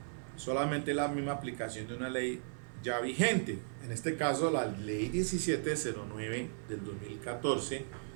solamente la misma aplicación de una ley ya vigente, en este caso la ley 1709 del 2014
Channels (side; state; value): left; silent; 54 dB below the other